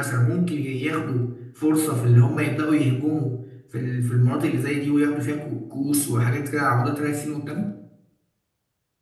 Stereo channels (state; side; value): identical; both; correlation 1.00